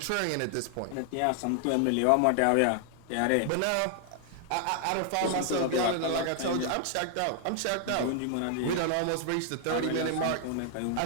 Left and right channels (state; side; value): different; both; correlation 0.00